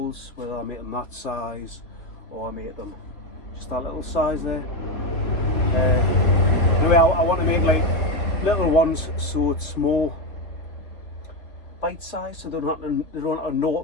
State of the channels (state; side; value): late; right; 3.6 ms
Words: whether I make them that size or I make them just that little size there. Anyway, I want to make like little ones so it's more bite size, so they don't have to know